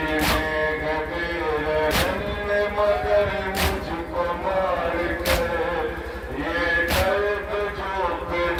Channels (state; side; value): identical; both; correlation 1.00